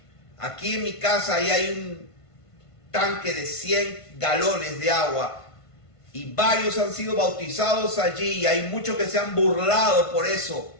Aquí en mi casa ahí hay un tanque de 100 galones de agua y varios han sido bautizados allí, y hay muchos que se han burlado por eso.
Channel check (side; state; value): right; late; 1.5 ms